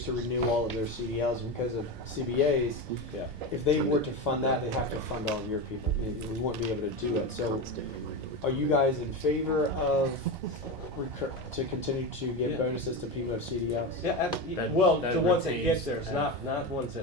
to renew all of their CDLs because of CBAs. Yeah. If they were to fund that, they'd have to fund all of your people. We wouldn't be able to do it. So are you guys in favor of to continue to give Yeah. bonuses to people who have CDLs? Yeah, That- well, that the ones that get retains theirs, not ones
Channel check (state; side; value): normal; both; correlation 0.19